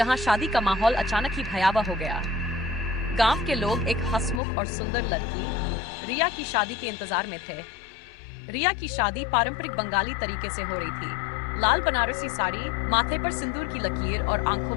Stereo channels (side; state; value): right; drops out; at 4.4 s